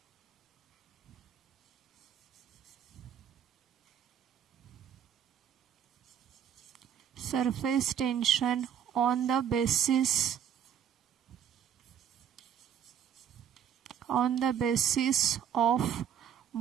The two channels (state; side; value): quieter; left; 9.0 dB